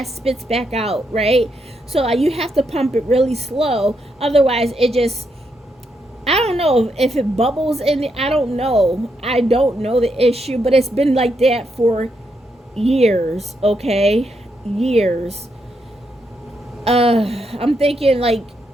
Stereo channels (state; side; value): normal; both; correlation 0.80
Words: spits back out, right? So you have to pump it really slow, otherwise it just, I don't know if it bubbles in it. I don't know the issue, but it's been like that for years. Okay, years. I'm thinking like